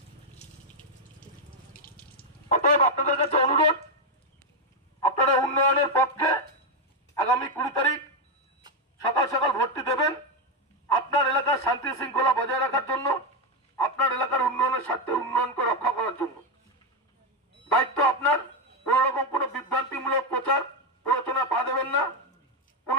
অতএব আপনাদের কাছে অনুরোধ, আপনারা উন্নয়নের পক্ষে আগামী 20 তারিখ সকাল সকাল ভোটটি দেবেন। আপনার এলাকার শান্তি শৃঙ্খলা বজায় রাখার জন্য, আপনার এলাকার উন্নয়নের স্বার্থে উন্নয়নকে রক্ষা করার জন্য দায়িত্ব আপনার। কোন রকম কোন বিভ্রান্তিমূলক প্রচার প্ররোচনা পা দেবেন না। কোন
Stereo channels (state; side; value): normal; both; correlation 0.04